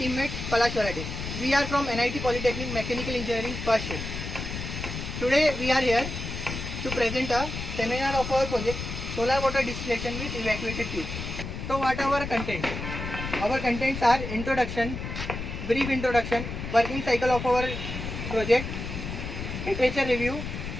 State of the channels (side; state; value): left; noise; rumble, 6 dB below the sound